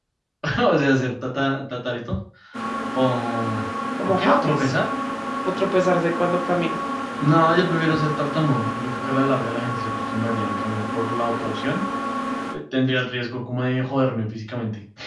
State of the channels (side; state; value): both; identical; correlation 1.00